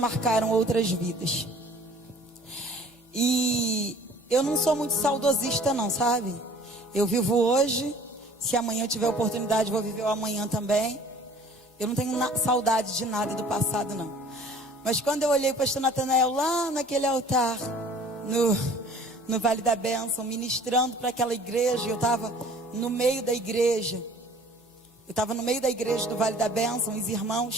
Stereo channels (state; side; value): normal; both; correlation 0.50